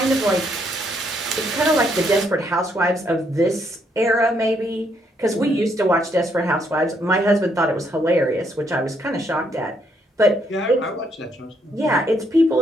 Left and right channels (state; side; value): normal; both; correlation 0.73